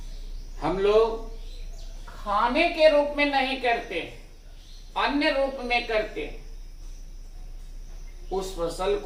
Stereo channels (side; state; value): both; identical; correlation 1.00